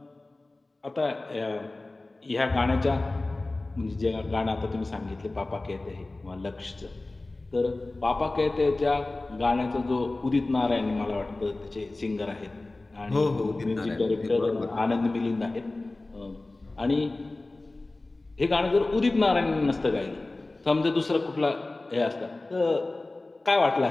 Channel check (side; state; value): right; quieter; 3.0 dB